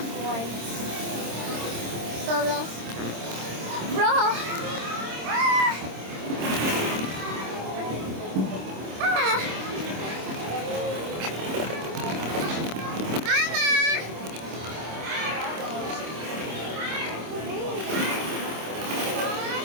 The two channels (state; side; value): late; left; 26 ms